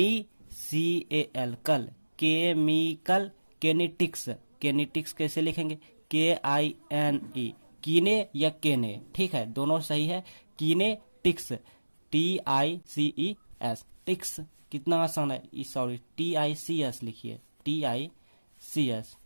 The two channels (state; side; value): inverted; both; correlation -1.00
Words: कल केमिकल केनेटिक्स। केनेटिक्स कैसे लिखेंगे, KINE कीने या केने। ठीक है, दोनों सही है। कीनेटिक्स TICES टिक्स, कितना आसान है। सॉरी TICS लिखिए, TICS